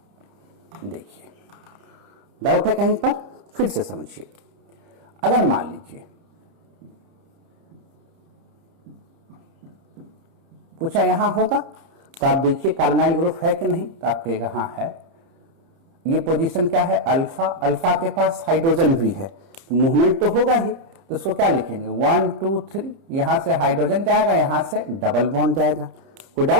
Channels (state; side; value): late; left; 30 ms